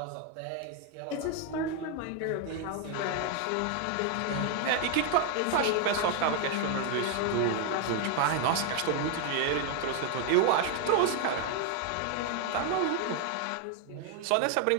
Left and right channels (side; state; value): both; different; correlation 0.01